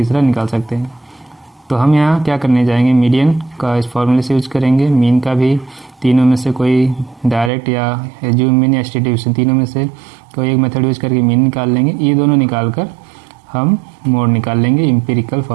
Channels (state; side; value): drops out; left; at 7.5 s